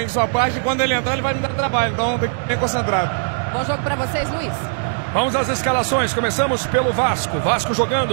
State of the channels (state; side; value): silent; left; digital silence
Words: sua parte e quando ele entrar ele vai me dar trabalho. Então tem que ficar bem concentrado. Bom jogo pra vocês, Luiz. Vamos às escalações. Começamos pelo Vasco. Vasco